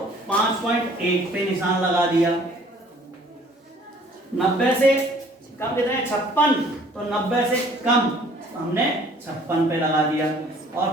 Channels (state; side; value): normal; both; correlation 0.55